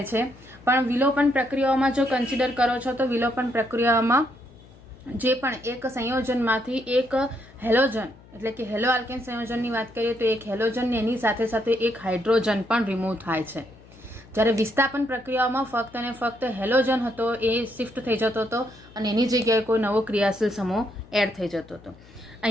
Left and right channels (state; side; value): noise; left; hum, 23 dB below the sound